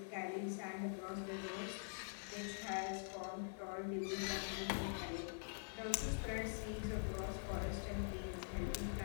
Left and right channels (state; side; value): silent; right; digital silence